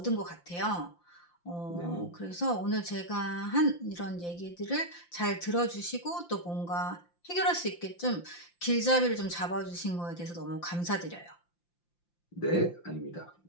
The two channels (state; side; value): late; right; 5.8 ms